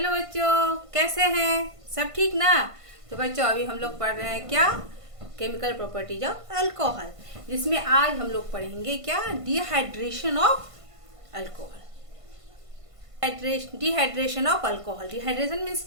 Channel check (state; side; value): late; left; 1.5 ms